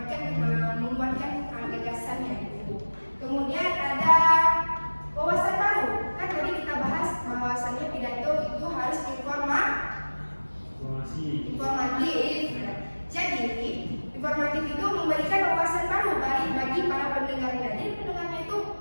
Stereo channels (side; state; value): both; inverted; correlation -1.00